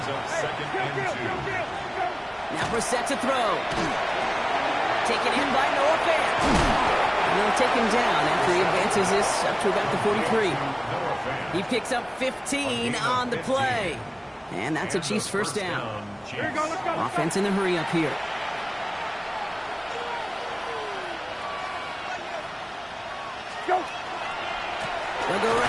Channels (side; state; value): both; identical; correlation 1.00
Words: up 2nd and 2. Now Brissett to throw. Taken in by Noah Fant. And they'll take him down after he advances this up to about the 43. He picks up 15 on the play. And that's a Chiefs first down. Here you go, let's go. Offense in the hurry up here. Go. They'll go